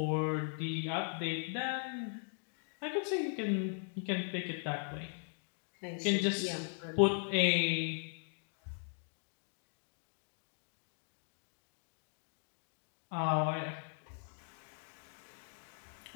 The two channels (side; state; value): right; silent; 52 dB below the other